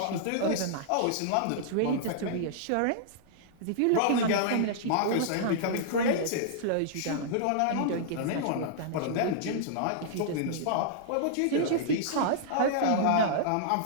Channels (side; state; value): both; different; correlation -0.01